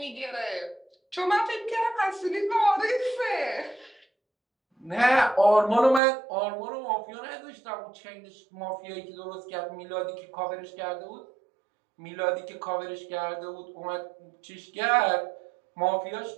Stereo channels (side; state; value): left; drops out; at 6.0 s